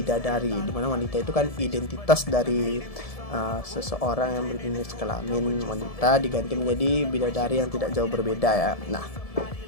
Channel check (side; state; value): right; late; 1.7 ms